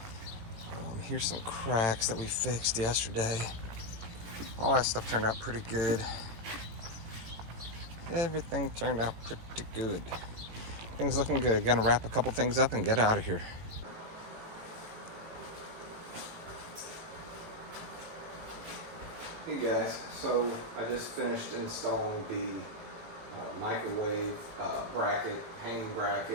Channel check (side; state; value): left; late; 18 ms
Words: Here's some cracks that we fixed yesterday. All that stuff turned out pretty good. Everything turned out pretty good. Things looking good. Gonna wrap a couple things up and get out of here. Hey guys, so I just finished installing the microwave bracket, hanging